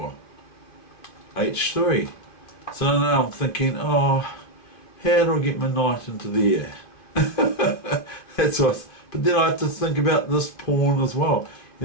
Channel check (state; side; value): late; right; 2.5 ms